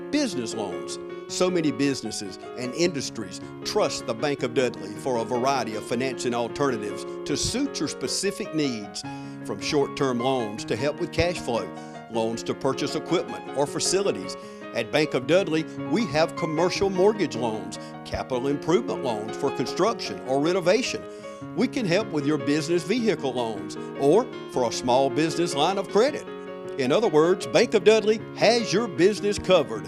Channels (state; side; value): identical; both; correlation 1.00